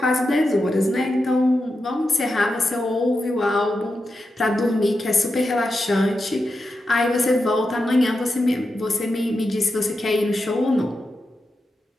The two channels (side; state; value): both; normal; correlation 0.88